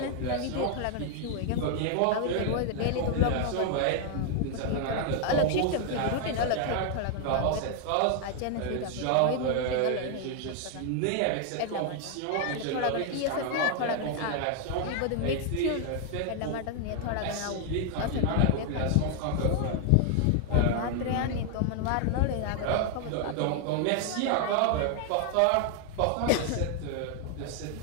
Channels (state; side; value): different; both; correlation 0.00